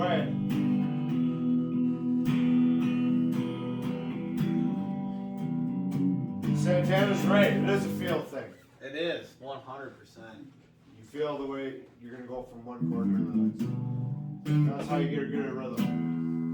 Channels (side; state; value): both; identical; correlation 1.00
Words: Santana's right. It is a feel thing. It is 100%. You feel the way you're gonna go from one chord to the next. That's how you get good at rhythm.